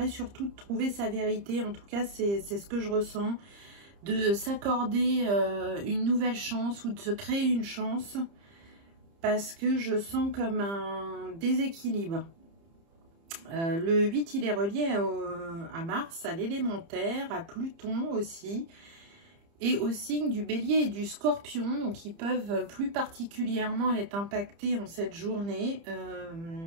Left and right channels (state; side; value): late; left; 30 ms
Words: surtout de trouver sa vérité. En tout cas, c'est ce que je ressens, de s'accorder une nouvelle chance ou de se créer une chance, parce que je sens comme un déséquilibre. Le 8, il est relié à Mars, à l'élémentaire, à Pluton aussi, et au signe du Bélier et du Scorpion, donc ils peuvent plus particulièrement être impactés en cette journée.